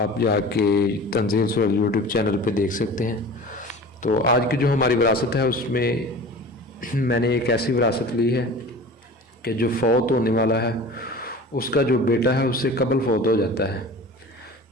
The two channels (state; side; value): normal; both; correlation 0.38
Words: जाके तंजील सुहेल यूट्यूब चैनल पर देख सकते हैं। तो आज की जो हमारी विरासत है उसमें मैंने एक ऐसी विरासत ली है कि जो फौत होने वाला है उसका जो बेटा है उससे कबल फौत हो जाता है।